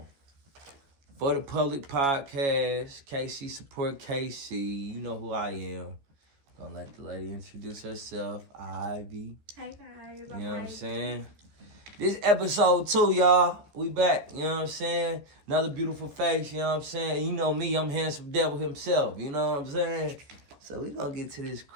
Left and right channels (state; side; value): late; left; 14 ms